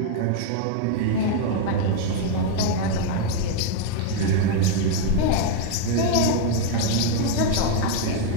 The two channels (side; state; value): both; different; correlation 0.00